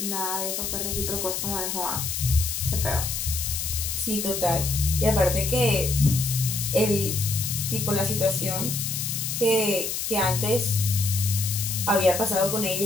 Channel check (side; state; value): left; noise; hiss, 3 dB below the sound